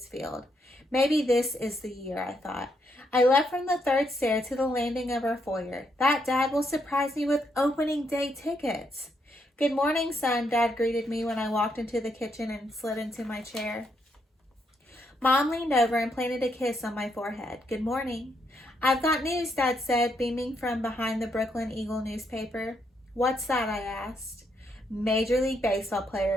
Field. Maybe this is the year, I thought. I left from the third stair to the landing of our foyer. That Dad will surprise me with opening day tickets. Good morning, son, Dad greeted me when I walked into the kitchen and slid into my chair. Mom leaned over and planted a kiss on my forehead. Good morning. I've got news, Dad said, beaming from behind the Brooklyn Eagle newspaper. What's that, I asked. Major League Baseball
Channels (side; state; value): both; normal; correlation 0.77